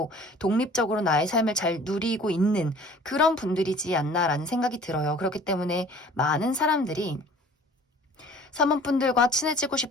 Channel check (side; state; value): both; normal; correlation 0.49